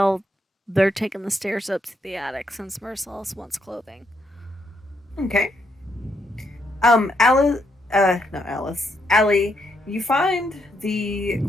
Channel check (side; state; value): both; normal; correlation 0.77